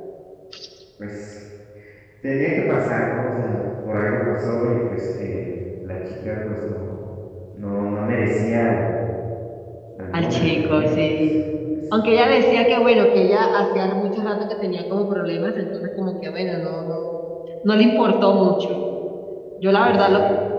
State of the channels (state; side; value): identical; both; correlation 1.00